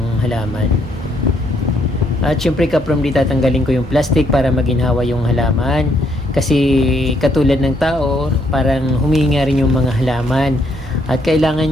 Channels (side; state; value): both; normal; correlation 0.71